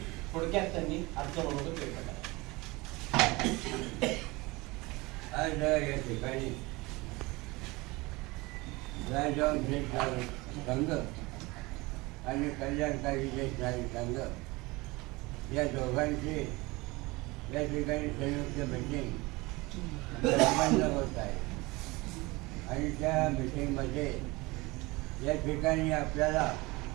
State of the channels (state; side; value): quieter; left; 23.0 dB